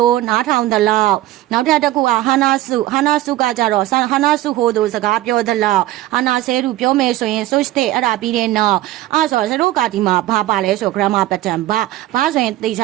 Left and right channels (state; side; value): quieter; left; 15.6 dB